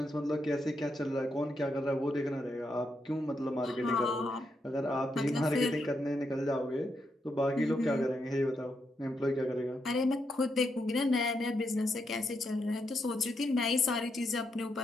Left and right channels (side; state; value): both; normal; correlation 0.81